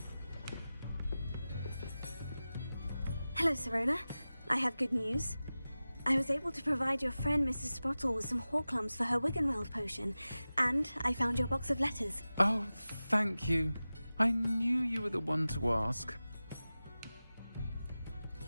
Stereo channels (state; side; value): inverted; both; correlation -0.96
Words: Hello, Serona. I have good news. I was able to provide your friend Mrs. Sprottle with some Horklums for her Wiggenweld potion, and I found your box of letters. Oh, thank you. I knew you were the one to ask.